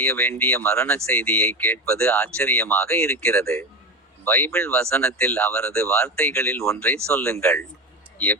வேண்டிய மரண செய்தியை கேட்பது ஆச்சரியமாக இருக்கிறது. பைபிள் வசனத்தில் அவரது வார்த்தைகளில் ஒன்றை சொல்லுங்கள்.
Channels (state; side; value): normal; both; correlation 0.20